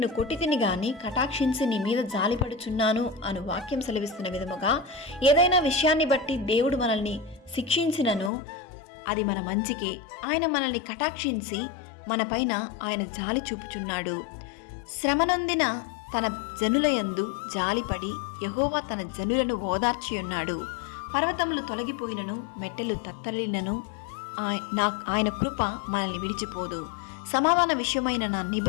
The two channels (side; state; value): right; drops out; at 8.3 s